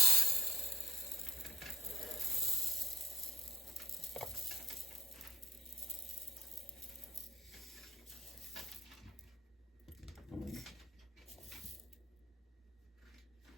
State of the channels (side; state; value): both; normal; correlation 0.57